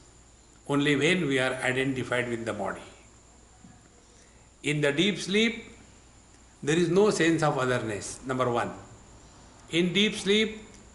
only when we are identified with the body. In the deep sleep, there is no sense of otherness, number one. In deep sleep,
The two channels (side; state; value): both; identical; correlation 1.00